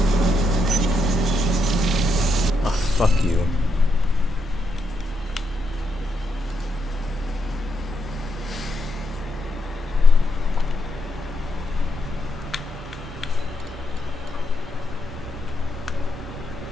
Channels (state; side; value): normal; both; correlation 0.80